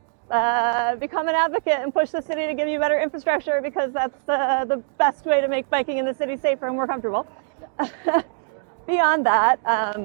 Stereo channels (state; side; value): silent; left; digital silence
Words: become an advocate and push the city to give you better infrastructure, because that's the best way to make biking in the city safer and more comfortable. Yes, fair enough. Beyond that,